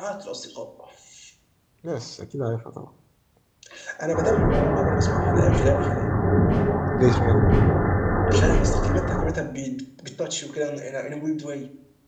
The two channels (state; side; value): identical; both; correlation 1.00